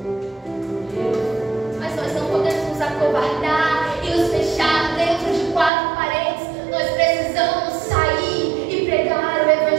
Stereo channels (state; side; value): drops out; left; at 5.7 s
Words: Mas nós não podemos nos acovardar e nos fechar dentro de quatro paredes. Nós precisamos sair e pregar o